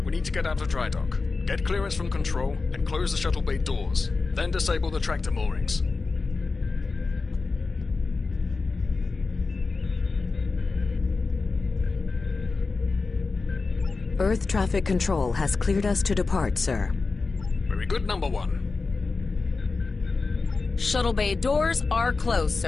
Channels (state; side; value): quieter; right; 4.1 dB